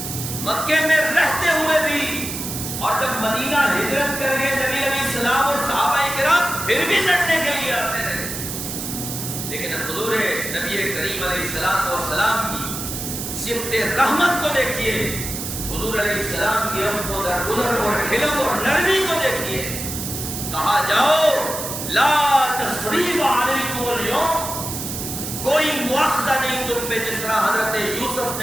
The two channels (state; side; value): noise; right; hiss, 6 dB below the sound